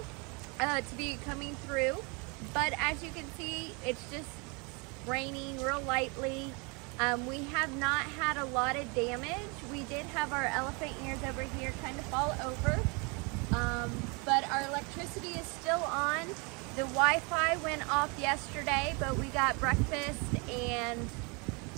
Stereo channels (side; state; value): left; quieter; 30.8 dB